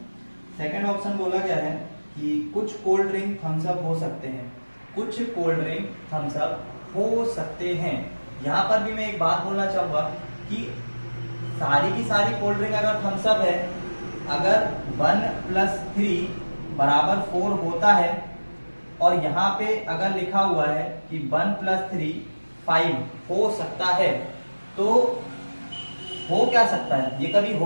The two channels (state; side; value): inverted; both; correlation -1.00